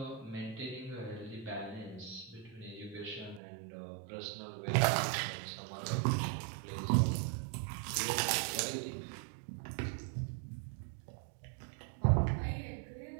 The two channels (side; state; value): left; drops out; at 3.4 s